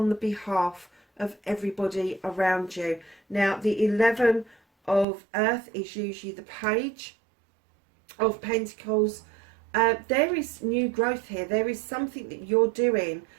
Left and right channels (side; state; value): left; drops out; at 5.1 s